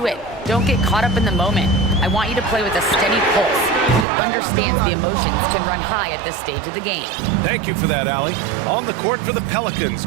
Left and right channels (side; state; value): left; drops out; at 4.0 s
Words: it. Don't get caught up in the moment. I want you to play with a steady pulse. He understands the emotions can run high at this stage of the game. Thank you for that, Allie. On the court for the Pelicans,